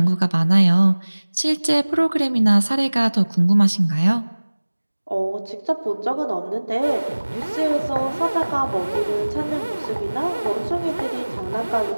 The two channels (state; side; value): inverted; both; correlation -1.00